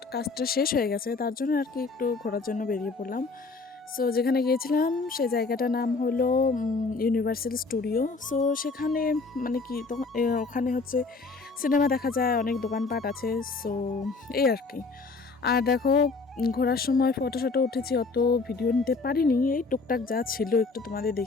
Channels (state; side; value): quieter; right; 4.1 dB